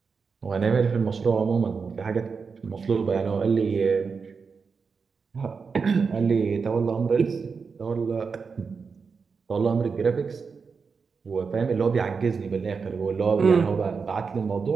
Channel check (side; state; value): left; quieter; 5.3 dB